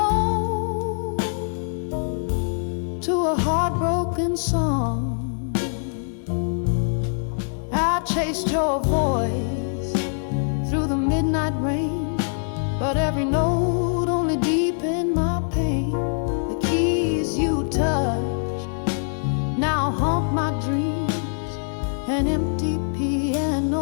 to a heartbroken song. I chased your voice through the midnight rain, but every note only deepened my pain. The keys you touched now haunt my dreams. An empty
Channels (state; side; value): silent; right; digital silence